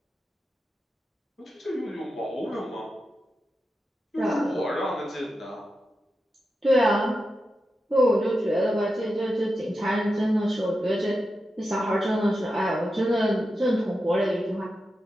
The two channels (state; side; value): normal; both; correlation 0.90